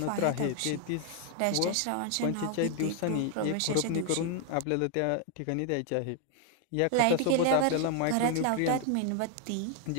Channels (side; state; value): both; different; correlation 0.00